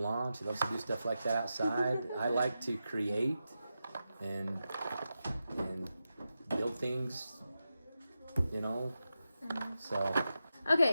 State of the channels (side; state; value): both; inverted; correlation -0.90